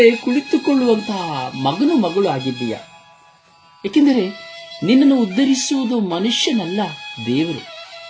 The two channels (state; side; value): identical; both; correlation 1.00